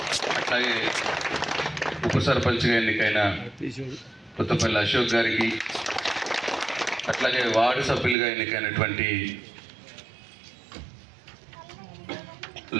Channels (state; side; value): drops out; left; at 8.2 s